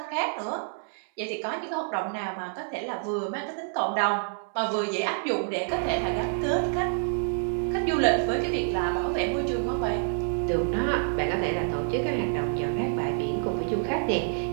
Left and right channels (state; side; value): silent; left; 60 dB below the other